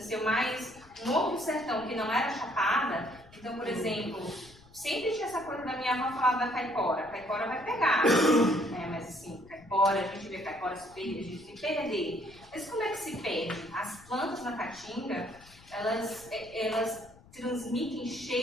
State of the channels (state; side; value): noise; left; rumble, 24 dB below the sound